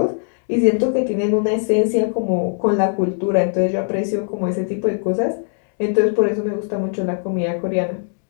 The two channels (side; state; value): right; silent; 66 dB below the other